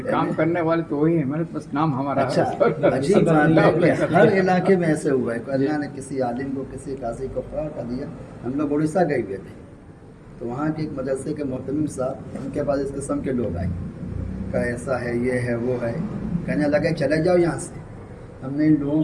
کام کرنے والے تو وہی ہیں، محنت بس نام ہمارا اچھا عجیب بات ہے کہ ہر علاقے میں ایسے ہوا ہے کہ اللہ نے کسی عالم کو، کسی قاضی کو فرا کر دیا۔ ہم لوگ اڑیسہ گئے ہوئے تھے، تو وہاں کے ایک مدرسے کے محتمم صاحب، ان کے پاس اس قسم کے لوگ آئے کہ ایسا ہے، یہ ہے، وہ ہے، کہنے لگے چلے جاؤ یہاں سے۔ ہم نے ان لوگوں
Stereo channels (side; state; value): both; identical; correlation 1.00